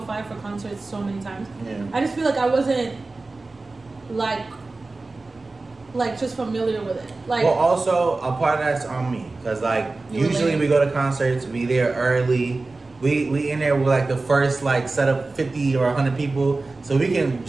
5 for concerts so many times. Yeah. I just feel like I wasn't like just familiar with it. Like, Well, also a part of that's on me, cause like You were usually late. we go to concerts, we there early. We in there with like the first like set of 50 or 100 people, so we can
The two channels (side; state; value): left; quieter; 3.4 dB